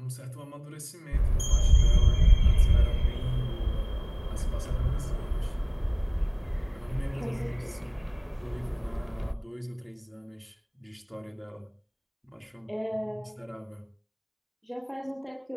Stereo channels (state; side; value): identical; both; correlation 1.00